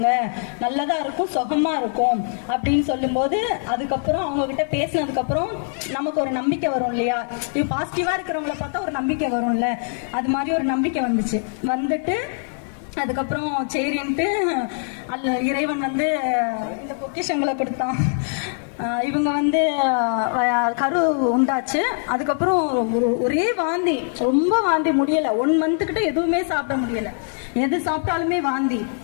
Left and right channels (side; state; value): right; silent; 64 dB below the other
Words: நல்லதா இருக்கும், சுகமா இருக்கும் அப்படின்னு சொல்லும்போது, அதுக்கப்புறம் அவங்க கிட்ட பேசினதுக்கு அப்புறம் நமக்கு ஒரு நம்பிக்கை வரும் இல்லையா? இது பாசிட்டிவா இருக்கிறவங்கள பார்த்தா ஒரு நம்பிக்கை வரும்ல, அது மாதிரி ஒரு நம்பிக்கை வந்துட்டு அதுக்கப்புறம் சரின்ட்டு இறைவன் வந்து இந்த பொக்கிஷங்களை கொடுத்தான். இவங்க வந்து கரு உண்டாச்சு. அதுக்கப்புறம் ஒரே வாந்தி, ரொம்ப வாந்தி, முடியல. 1 மந்த் கிட்ட எதுவுமே சாப்பிட முடியல, எது சாப்பிட்டாலுமே வாந்தி.